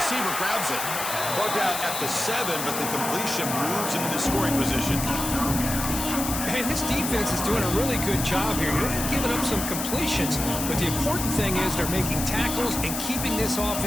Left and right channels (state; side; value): noise; left; hiss, 4 dB below the sound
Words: grabs it. Brought down at the 7, but the completion moves him into scoring position. And this defense is doing a really good job here. They're giving up some completions, but the important thing is they're making tackles and keeping this